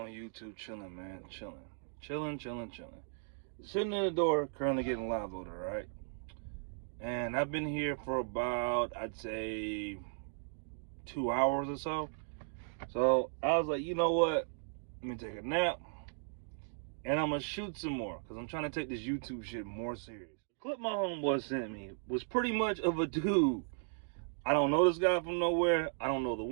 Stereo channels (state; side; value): silent; left; digital silence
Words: YouTube? Chilling, man. Chilling. Sitting in the door, currently getting live voted, right? And I've been here for about, I'd say, 2 hours or so. So I was like, you know what? Let me take a nap. And I'm going to shoot some more. Because I'm trying to take this YouTube shit more serious. The clip my homeboy sent me was pretty much of a dude. I don't know this guy from nowhere. I don't know the